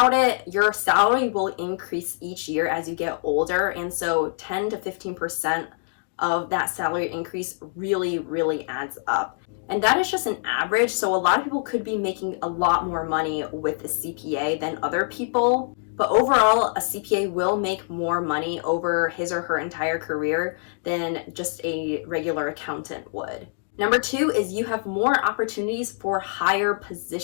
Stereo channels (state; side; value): silent; right; digital silence